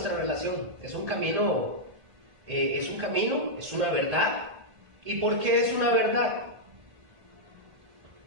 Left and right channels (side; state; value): left; late; 1.6 ms